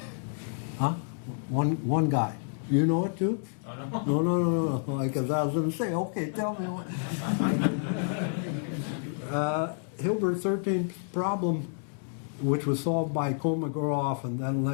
Huh? One guy. You know it too? Oh, no. No. Because I was going to say, okay, tell me what. Hilbert's 13th problem, which was solved by Kolmogorov and then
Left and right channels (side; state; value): right; silent; 58 dB below the other